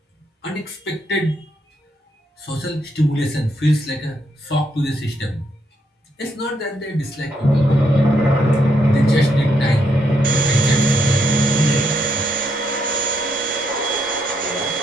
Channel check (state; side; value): normal; both; correlation 0.78